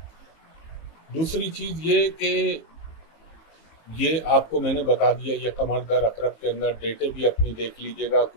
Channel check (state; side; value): late; right; 19 ms